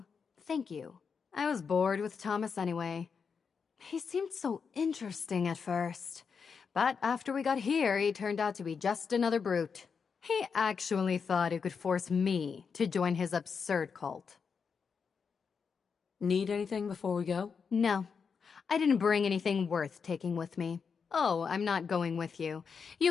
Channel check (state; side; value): quieter; right; 5.9 dB